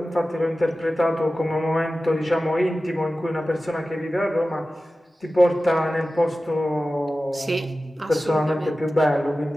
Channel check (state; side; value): normal; both; correlation 0.95